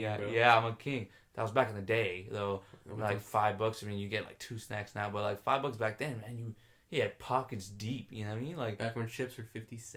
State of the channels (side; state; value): both; identical; correlation 1.00